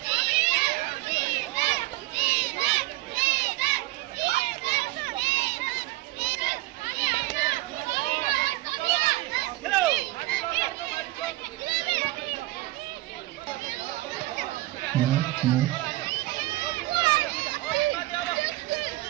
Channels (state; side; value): quieter; left; 19.2 dB